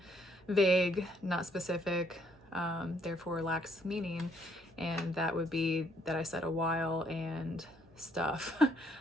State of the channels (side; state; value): both; normal; correlation 0.68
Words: vague, not specific, therefore lacks meaning, and that would be that I said a while and stuff.